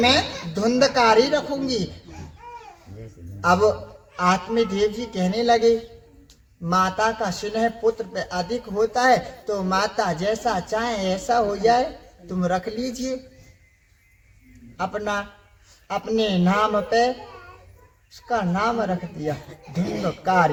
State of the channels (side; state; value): both; identical; correlation 1.00